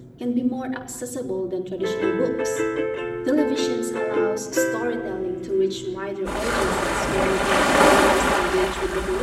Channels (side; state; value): both; identical; correlation 1.00